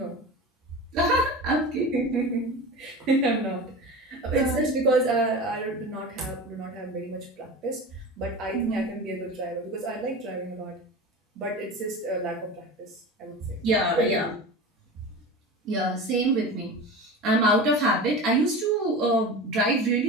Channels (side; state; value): both; normal; correlation 0.30